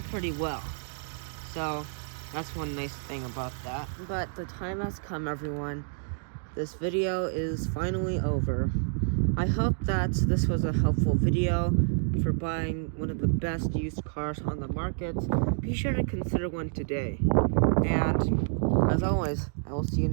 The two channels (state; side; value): silent; left; digital silence